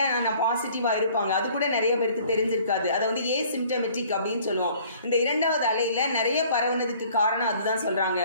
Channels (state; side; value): inverted; both; correlation -0.55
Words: நான் பாசிட்டிவாக இருப்பாங்க, அது கூட நிறைய பேருக்கு தெரிஞ்சிருக்காது. அதை வந்து ஏசிம்டமெட்டிக் அப்படின்னு சொல்லுவோம். இந்த 2வது அலையில் நிறைய பரவுனதுக்கு காரணம் அதுதான் சொல்கிறாங்க.